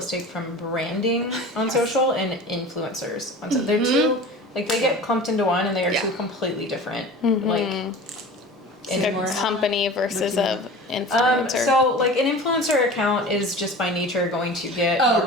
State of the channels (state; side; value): normal; both; correlation 0.37